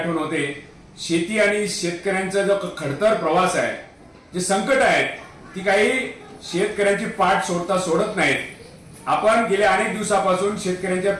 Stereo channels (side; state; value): both; identical; correlation 1.00